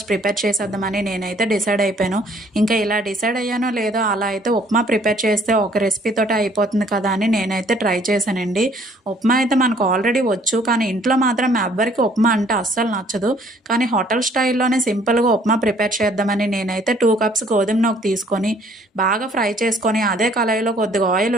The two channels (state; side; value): normal; both; correlation 0.60